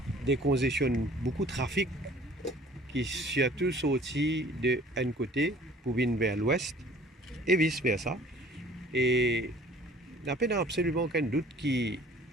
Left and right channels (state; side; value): normal; both; correlation 0.51